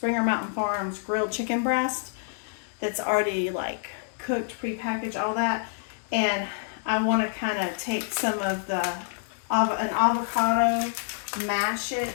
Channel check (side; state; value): right; silent; digital silence